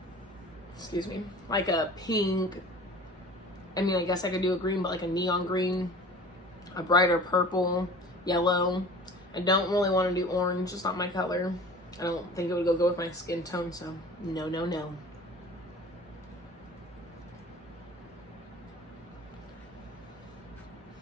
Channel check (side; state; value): both; normal; correlation 0.42